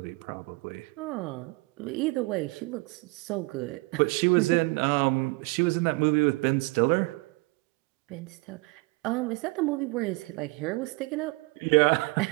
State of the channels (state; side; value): quieter; left; 26.4 dB